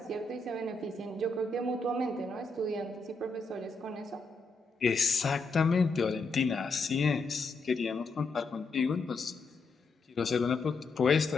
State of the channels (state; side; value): quieter; right; 3.6 dB